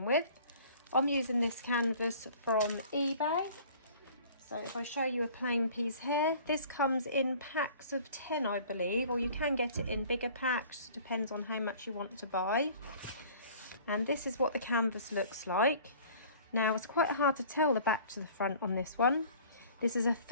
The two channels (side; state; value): both; inverted; correlation -0.49